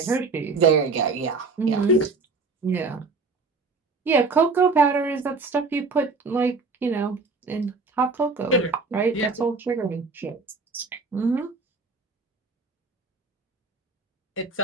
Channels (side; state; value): left; quieter; 4.1 dB